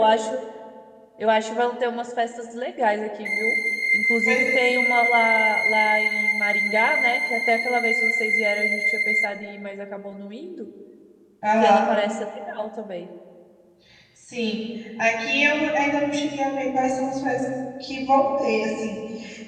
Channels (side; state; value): both; identical; correlation 1.00